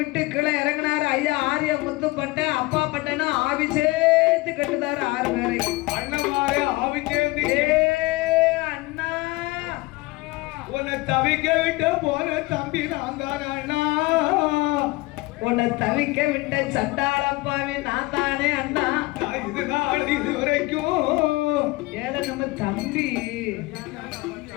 கீழே இறங்கினாரு ஐயா ஆரிய முத்துப்பட்ட. அப்பா பட்டனா ஆவி சேர்த்து கட்டுதாரு 6 பேரை. அண்ணமாரே ஆவி சேர்ந்து. அண்ணா உன்னை தவிக்க விட்டு போன தம்பி நான் தானே அண்ணா. உன்னை தவிக்க விட்ட சண்டாளப்பாவி நான் தானே அண்ணா. இது நாள் இது வரைக்கும் ஏல நம்ம தம்பி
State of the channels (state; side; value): quieter; right; 21.9 dB